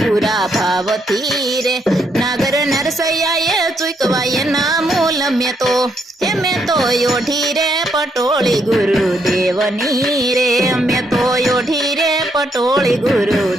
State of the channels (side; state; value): both; normal; correlation 0.75